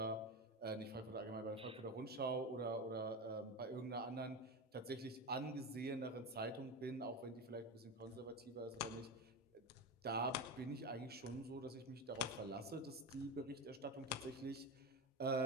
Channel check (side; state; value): both; normal; correlation 0.20